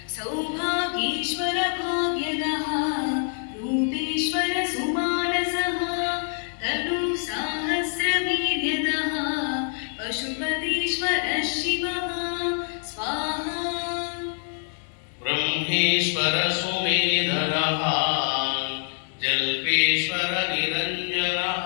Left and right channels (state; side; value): silent; right; 56 dB below the other